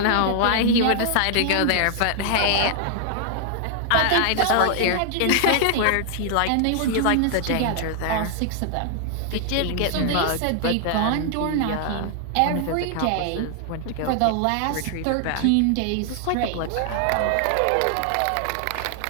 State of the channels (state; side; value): different; both; correlation 0.00